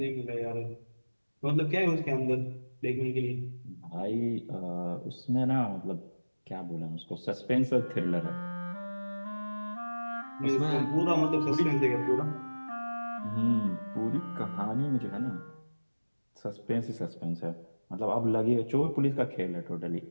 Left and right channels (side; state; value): both; inverted; correlation -1.00